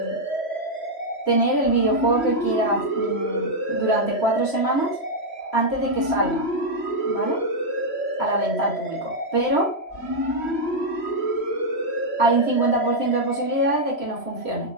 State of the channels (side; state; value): right; late; 3.1 ms